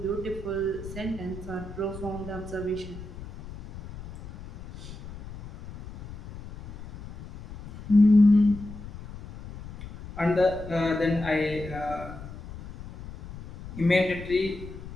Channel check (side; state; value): left; noise; rumble, 13 dB below the sound